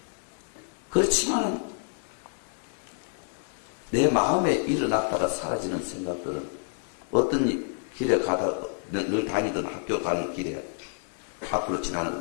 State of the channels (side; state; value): right; silent; 59 dB below the other